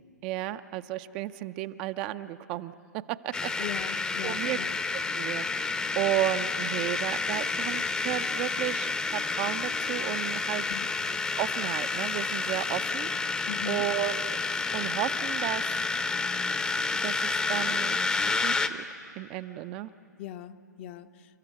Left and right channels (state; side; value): normal; both; correlation 0.51